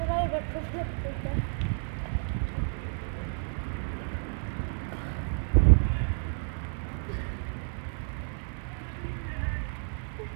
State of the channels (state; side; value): silent; left; digital silence